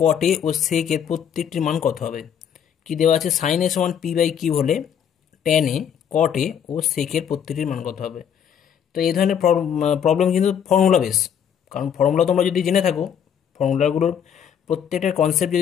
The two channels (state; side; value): quieter; right; 8.5 dB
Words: কট এ ও সেক এর প্রত্যেকটির মান কত হবে। কি দেওয়া আছে, সাইন এ সমান পি বাই কিউ হলে ট্যান এ কট এ ও সেক এর প্রত্যেকটির মান কত হবে। তো এই ধরনের প্রবলেম কিন্তু ফর্মুলা বেস, কারণ ফর্মুলা তোমরা যদি জেনে থাকো, ফর্মুলাগুলোর প্রত্যেকটার কনসেপ্ট